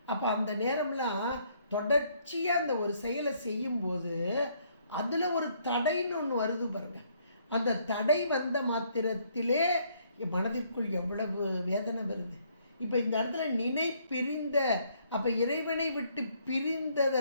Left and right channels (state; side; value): inverted; both; correlation -0.67